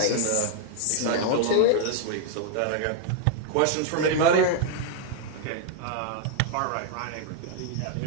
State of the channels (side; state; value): both; different; correlation 0.00